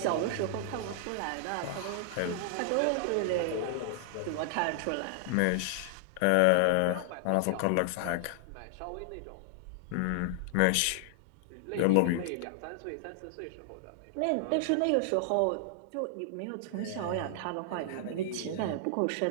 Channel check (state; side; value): different; both; correlation -0.01